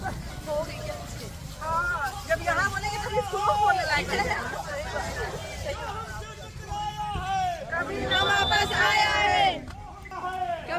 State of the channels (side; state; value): both; identical; correlation 1.00